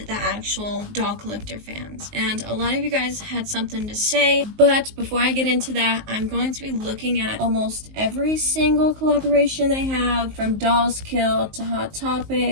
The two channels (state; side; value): late; left; 19 ms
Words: the actual doll collector fans? And a lot of you guys had something to say, but before I get into that, I'm going to be looking at almost every single collaboration they have, from Dolls Kill to Hot